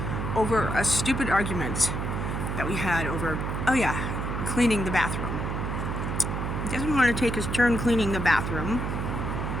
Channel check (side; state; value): right; noise; hum, 2 dB below the sound